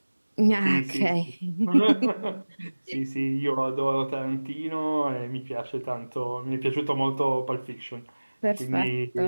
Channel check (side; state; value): both; inverted; correlation -1.00